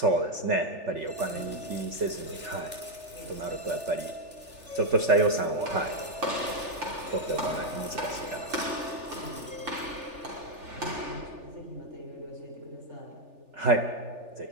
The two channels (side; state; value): left; late; 3.4 ms